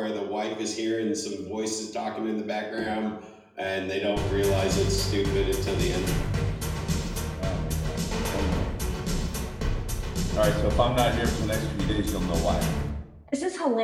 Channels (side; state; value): both; identical; correlation 1.00